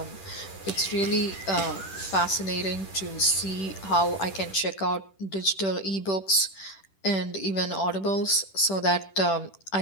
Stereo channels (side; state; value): right; late; 10 ms